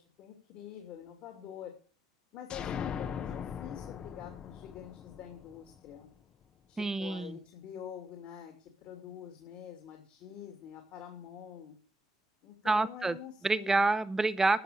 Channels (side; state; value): both; normal; correlation 0.86